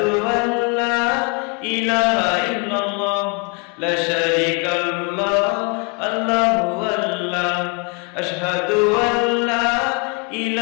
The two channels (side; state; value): right; quieter; 33.0 dB